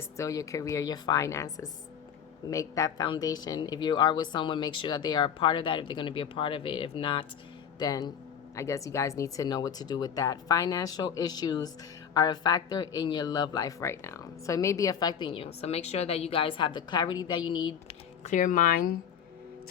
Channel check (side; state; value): right; quieter; 8.1 dB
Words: still your career, your finances. Make that foundation. If you are with someone, make sure that they are a part of that, if they're going to be a part of it. If not, then I guess you guys need to know what to do with that. Financial issues are a factor in your love life right now. So it may be affecting you. So make sure that you guys have the clarity that you need, clear mind